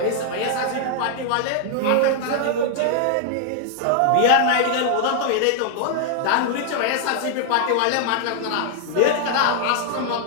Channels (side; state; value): both; different; correlation 0.00